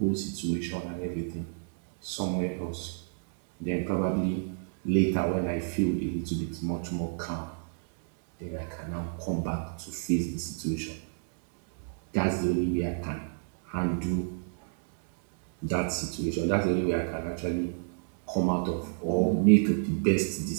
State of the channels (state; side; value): silent; left; digital silence